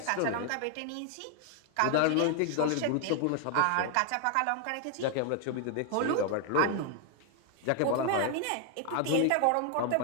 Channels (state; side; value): different; both; correlation 0.00